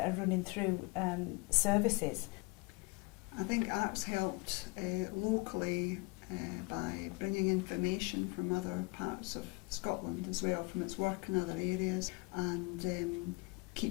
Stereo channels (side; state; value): right; quieter; 27.1 dB